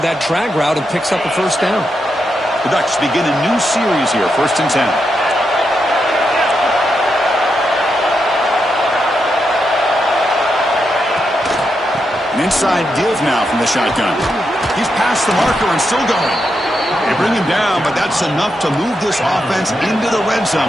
that drag route and picks up a 1st down. The Ducks begin a new series here, 1st and 10. An inside give now from the shotgun. He's past the marker and still going. They bring him down, but that's enough to move this offense into the red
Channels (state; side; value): normal; both; correlation 0.84